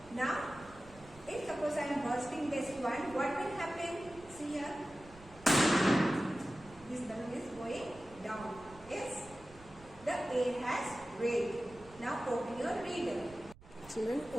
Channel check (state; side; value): noise; right; rumble, 21 dB below the sound